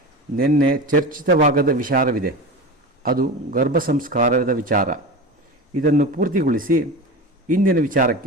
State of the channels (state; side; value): normal; both; correlation 0.28